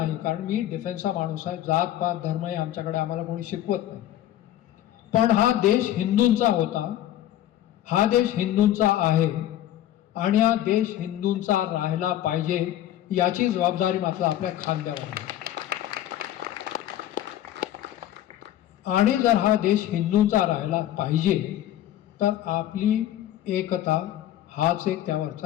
कारण मी डिफेन्सचा माणूस आहे. जात पात धर्म हे आमच्याकडे आम्हाला कोणी शिकवत नाही. पण हा देश हिंदूंचा होता, हा देश हिंदूंचा आहे आणि हा देश हिंदूंचा राहिला पाहिजे याची जबाबदारी मात्र आपल्या खांद्यावर आहे. आणि जर हा देश हिंदूंचा राहिला पाहिजे तर आपली एकता हाच एक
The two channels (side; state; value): right; quieter; 12.7 dB